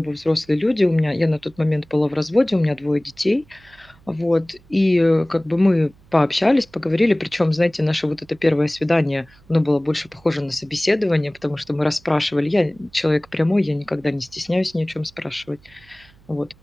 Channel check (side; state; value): right; noise; hum, 28 dB below the sound